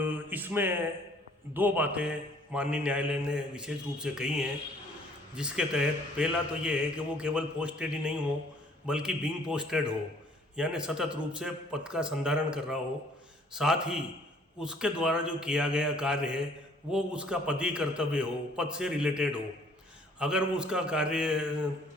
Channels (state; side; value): normal; both; correlation 0.59